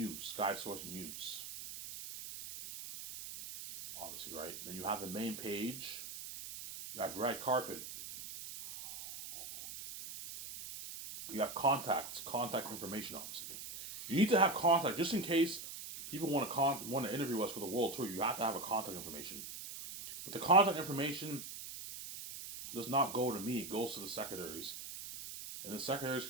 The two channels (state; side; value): noise; right; hiss, 9 dB below the sound